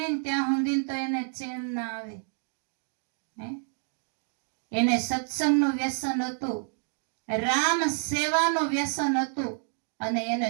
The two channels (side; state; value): left; silent; 57 dB below the other